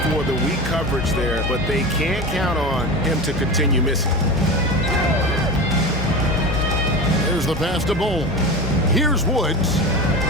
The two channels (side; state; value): both; normal; correlation 0.27